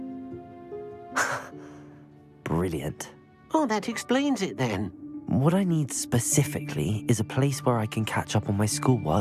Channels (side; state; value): both; identical; correlation 1.00